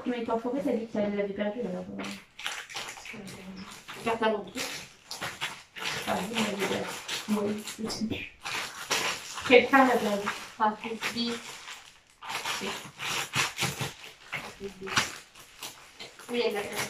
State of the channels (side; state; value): both; identical; correlation 1.00